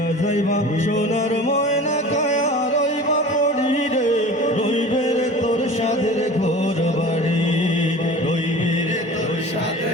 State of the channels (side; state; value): both; normal; correlation 0.39